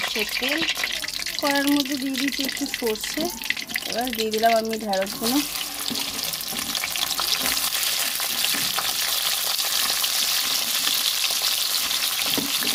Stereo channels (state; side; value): identical; both; correlation 1.00